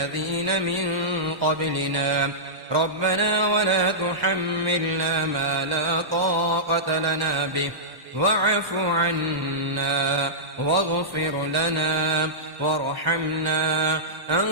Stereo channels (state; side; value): late; left; 1.1 ms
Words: من قبلنا ربنا ولا تحملنا ما لا طاقة لنا به واعف عنا واغفر لنا وارحمنا